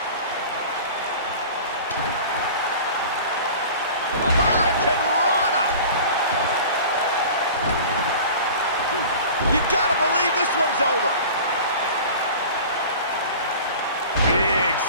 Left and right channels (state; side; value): inverted; both; correlation -0.40